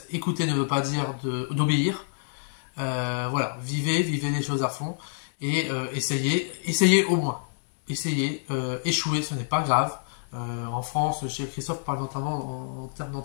écouter ne veut pas dire d'obéir. Voilà, vivez les choses à fond et essayez au moins. Essayez, échouer, ce n'est pas grave. En France, chez Christophe parle notamment en termes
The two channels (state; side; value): silent; right; digital silence